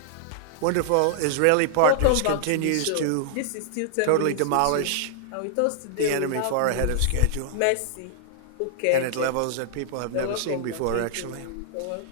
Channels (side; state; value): both; different; correlation -0.01